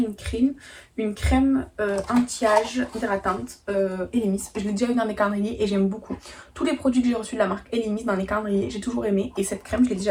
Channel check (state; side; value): identical; both; correlation 1.00